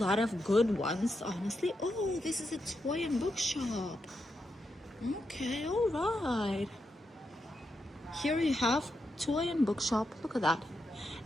of good ones, honestly. Oh, this is a toy and bookshop. Okay, all right. Here you have toy and bookshop. Look at that.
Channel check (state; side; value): normal; both; correlation 0.85